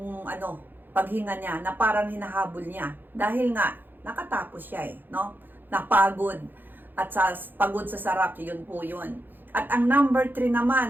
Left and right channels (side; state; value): left; late; 0.092 ms